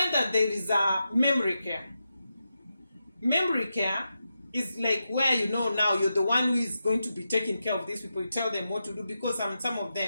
that there is a memory care. Memory care is like where, you know, now you're the one who is going to be taking care of these people. You tell them what to do, because some of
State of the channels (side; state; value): both; inverted; correlation -0.88